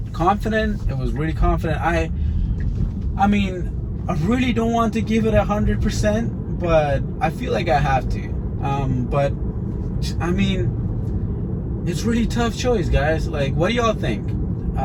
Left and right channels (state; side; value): identical; both; correlation 1.00